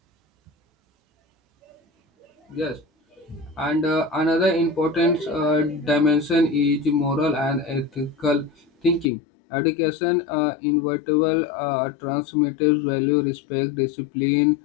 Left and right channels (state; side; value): drops out; right; at 9.1 s